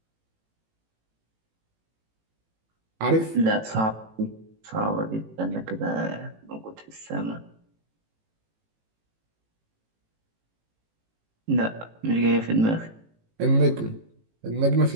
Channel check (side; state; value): left; late; 18 ms